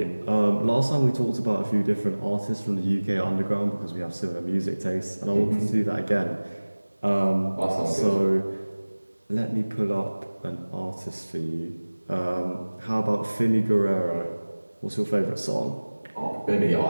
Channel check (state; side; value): inverted; both; correlation -1.00